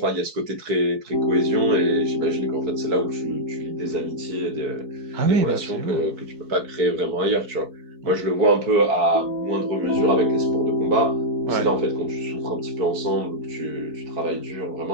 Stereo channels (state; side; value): late; left; 4.7 ms